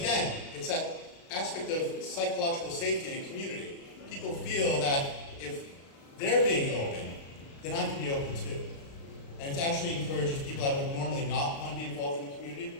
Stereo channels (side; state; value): right; late; 36 ms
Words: it's that aspect of psychological safety in a community. People feel that if they're being open, then I can be open too. And it actually encourages people that would normally not want to be involved in the